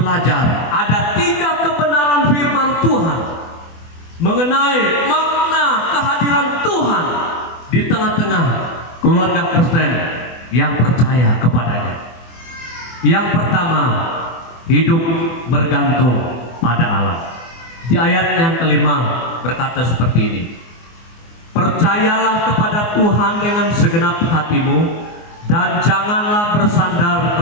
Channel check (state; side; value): late; right; 24 ms